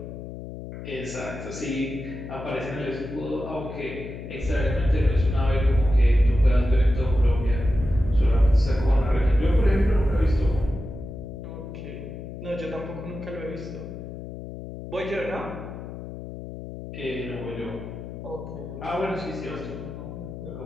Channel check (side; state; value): left; noise; hum, 10 dB below the sound